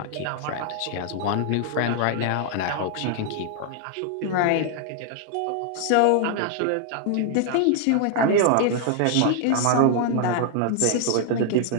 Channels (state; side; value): different; both; correlation 0.00